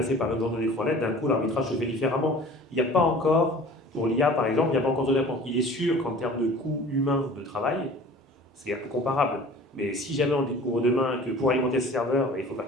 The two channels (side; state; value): both; normal; correlation 0.44